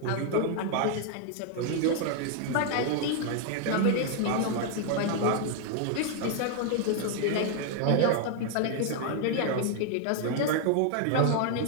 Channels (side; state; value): both; different; correlation 0.00